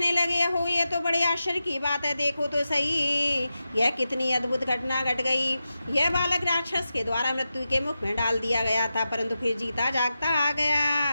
लगे, हो ये तो बड़े आश्चर्य की बात है। देखो तो सही यह कितनी अद्भुत घटना घट गई। यह बालक राक्षस के द्वारा मृत्यु के मुख में डाल दिया गया था परंतु फिर जीता जागता आ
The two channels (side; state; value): both; inverted; correlation -0.91